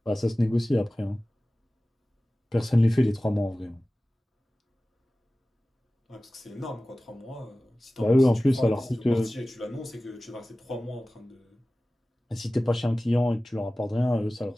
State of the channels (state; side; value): normal; both; correlation 0.97